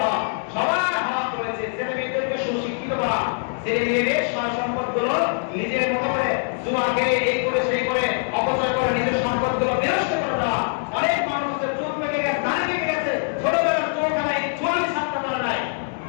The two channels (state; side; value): silent; right; digital silence